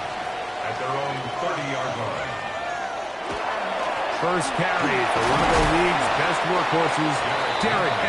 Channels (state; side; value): identical; both; correlation 1.00